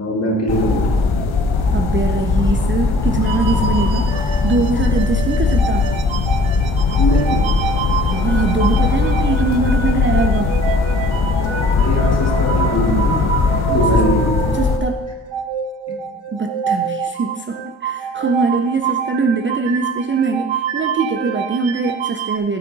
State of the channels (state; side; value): normal; both; correlation 0.50